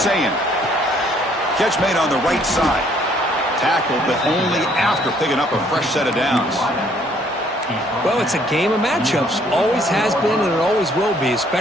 Catch made on the right side. Tackled, but only after picking up a fresh set of downs. Well, it's a game of matchups. Always has been and it always will be,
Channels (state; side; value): normal; both; correlation 0.63